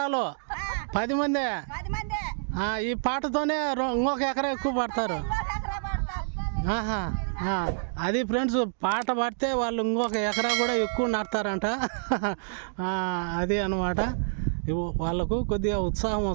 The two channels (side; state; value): left; silent; digital silence